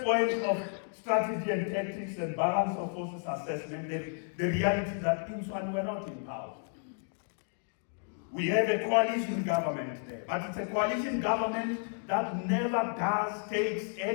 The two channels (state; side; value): silent; right; 56 dB below the other